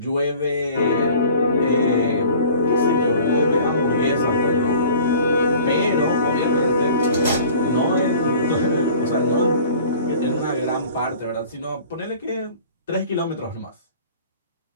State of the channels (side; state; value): both; inverted; correlation -0.47